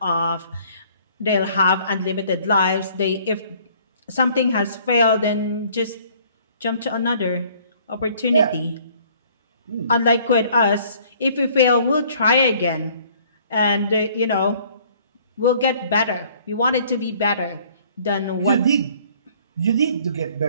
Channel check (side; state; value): both; inverted; correlation -0.57